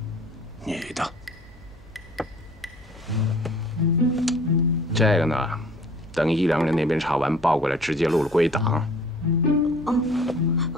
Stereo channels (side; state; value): both; normal; correlation 0.51